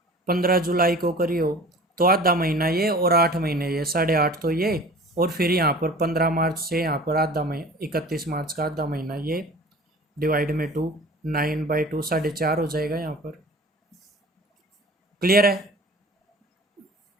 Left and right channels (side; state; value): both; normal; correlation 0.42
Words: 15 जुलाई को करियो तो आधा महीना ये और 8 महीने ये 8.5 तो ये, और फिर यहाँ पर 15 मार्च से यहाँ पर आधा महीना 31 मार्च का आधा महीना ये डिवाइड में 2, 9/2 4.5 हो जाएगा यहाँ पर। क्लियर है?